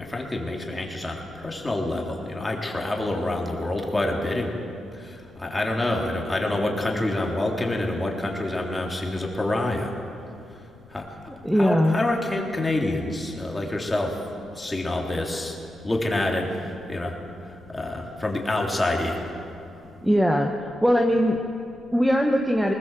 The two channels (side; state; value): left; noise; rumble, 26 dB below the sound